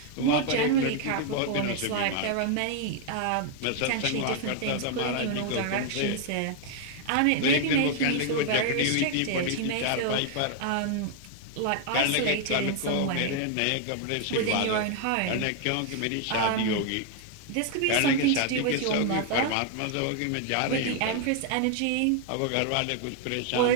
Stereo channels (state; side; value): different; both; correlation 0.00